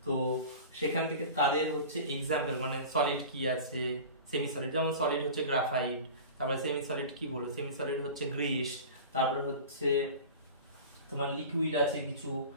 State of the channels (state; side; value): inverted; both; correlation -0.35